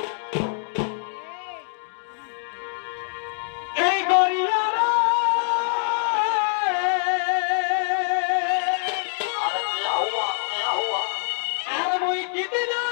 এই গরিয়ারা আর মুই কিদিন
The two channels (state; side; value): silent; right; 62 dB below the other